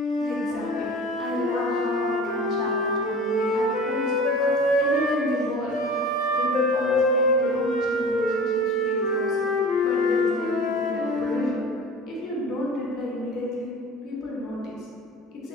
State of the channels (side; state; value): both; normal; correlation 0.39